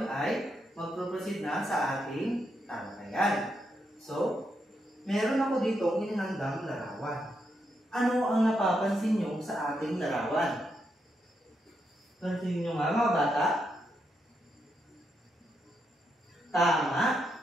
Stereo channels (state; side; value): normal; both; correlation 0.82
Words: ay magproproceed na sa ating talakayan. So, meron ako dito inihandang larawan. Ano ang napapansin nyo sa ating larawan? Pansin nyo nga mga bata? Tama.